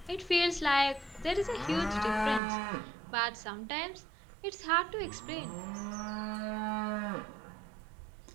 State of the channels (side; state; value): left; drops out; at 2.4 s